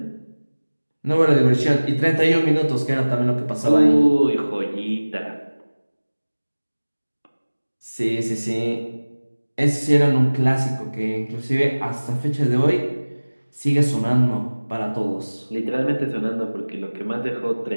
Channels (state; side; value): inverted; both; correlation -1.00